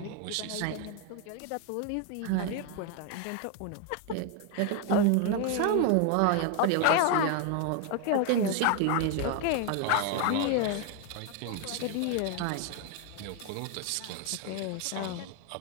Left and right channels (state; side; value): different; both; correlation 0.01